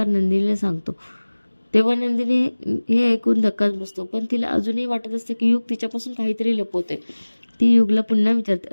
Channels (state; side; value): inverted; both; correlation -1.00